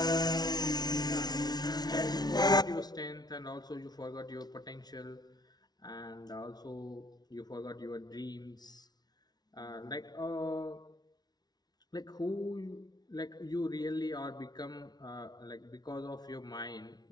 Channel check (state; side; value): late; right; 0.19 ms